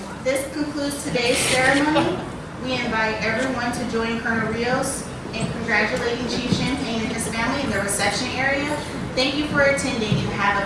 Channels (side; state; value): both; identical; correlation 1.00